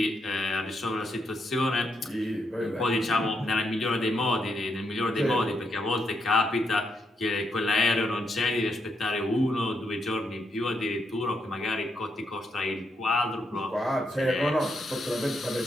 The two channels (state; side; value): normal; both; correlation 0.80